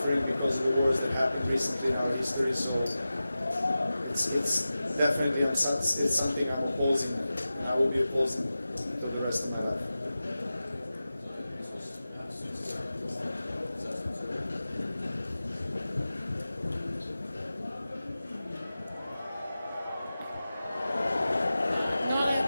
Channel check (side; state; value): both; inverted; correlation -0.95